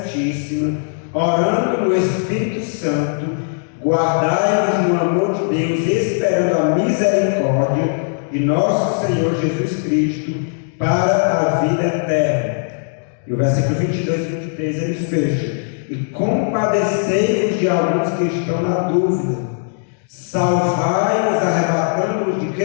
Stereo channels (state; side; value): silent; right; digital silence